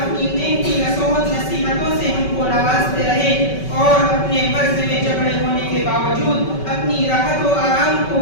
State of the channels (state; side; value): late; right; 5.3 ms